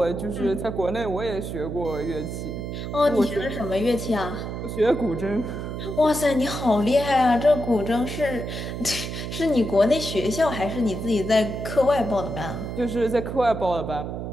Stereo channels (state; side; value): noise; right; hum, 6 dB below the sound